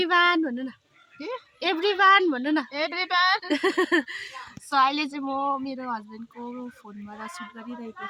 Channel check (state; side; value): identical; both; correlation 1.00